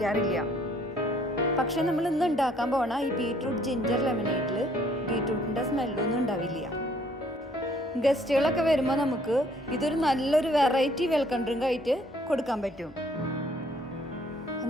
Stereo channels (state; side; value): normal; both; correlation 0.62